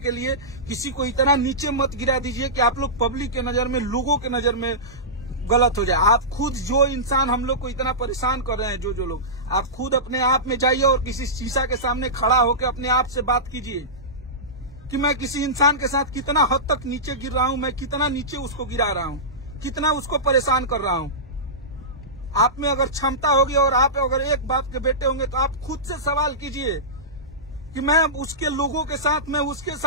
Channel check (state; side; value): normal; both; correlation -0.17